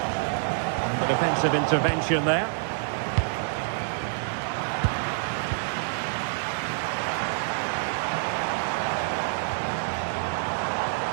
And the defensive intervention there.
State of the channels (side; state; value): left; silent; digital silence